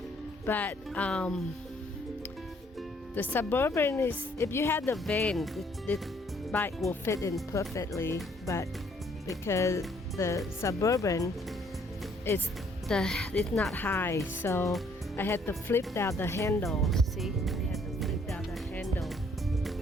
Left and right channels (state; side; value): normal; both; correlation 0.64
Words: But the Suburban is, if you had the van, the bike will fit in perfectly. But because the Suburban it's not high, so I had to flip down the handle. See, I had to flip down the handle